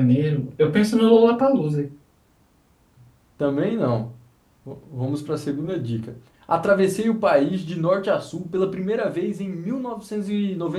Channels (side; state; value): both; identical; correlation 1.00